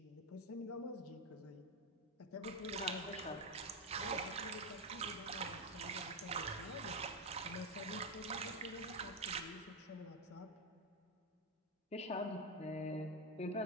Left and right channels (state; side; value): normal; both; correlation 0.08